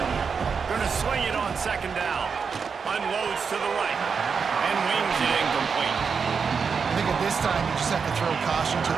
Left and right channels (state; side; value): quieter; left; 5.8 dB